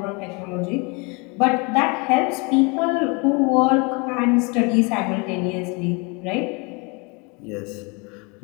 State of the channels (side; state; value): right; quieter; 30.1 dB